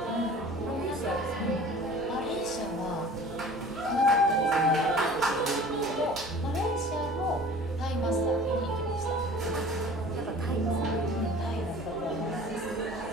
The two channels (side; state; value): both; normal; correlation 0.44